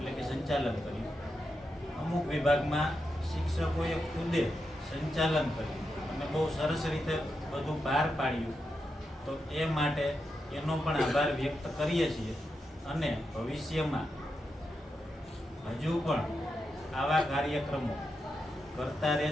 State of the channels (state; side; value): normal; both; correlation 0.86